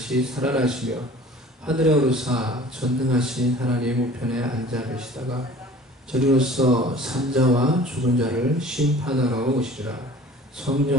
살아나시며 하늘에 오르사 전능하신 하나님 우편에 앉아 계시다가 저리로서 산자와 죽은 자를 심판하러 오시리라.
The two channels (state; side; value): normal; both; correlation 0.46